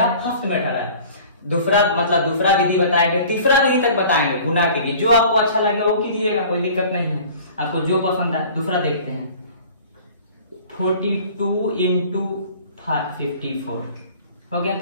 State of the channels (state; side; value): inverted; both; correlation -0.46